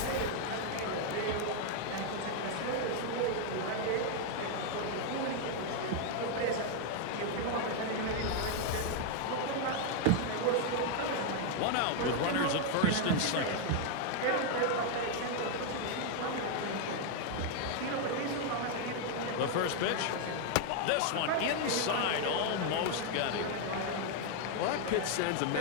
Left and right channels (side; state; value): both; different; correlation 0.00